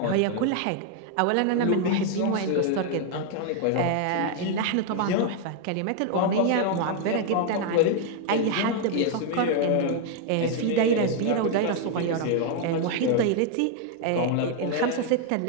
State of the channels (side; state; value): both; different; correlation 0.00